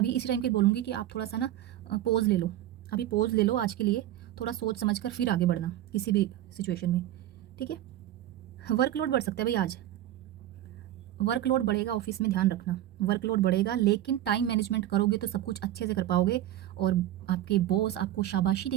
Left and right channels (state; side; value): quieter; left; 13.2 dB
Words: इसी टाइम पे बोलूँगी कि आप थोड़ा सा ना पॉज ले लो, अभी पॉज ले लो आज के लिए, थोड़ा सोच समझ कर फिर आगे बढ़ना किसी भी सिचुएशन में, ठीक है। वर्कलोड बढ़ सकता है भाई आज, वर्कलोड बढ़ेगा ऑफिस में, ध्यान रखना वर्कलोड बढ़ेगा, लेकिन टाइम मैनेजमेंट करोगे तो सब कुछ अच्छे से कर पाओगे और आपके बॉस आपको शाबाशी